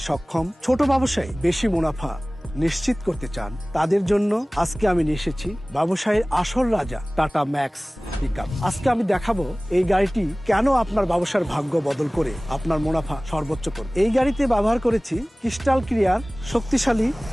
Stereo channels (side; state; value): both; normal; correlation 0.98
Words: সক্ষম, ছোট ব্যবসায়ী বেশি মুনাফা নিশ্চিত করতে চান, তাদের জন্য আজকে আমি নিয়ে এসেছি ব্যবসায়ের আসল রাজা টাটা ম্যাক্স পিকআপ। আজকে আমি দেখাবো এই গাড়িটি কেন আপনার ব্যবসার ভাগ্য বদল করে আপনার মুনাফা সর্বোচ্চ করবে। এই গাড়িতে ব্যবহার করেছি ক্রিস্টাল ক্লিয়ার শক্তিশালী